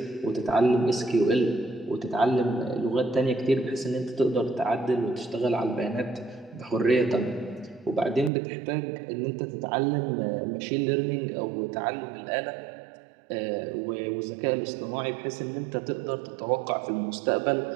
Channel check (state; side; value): drops out; left; at 8.3 s